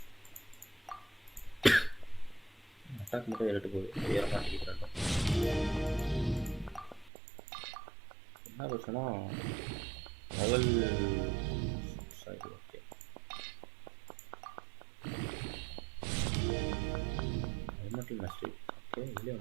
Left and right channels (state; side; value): drops out; left; at 7.1 s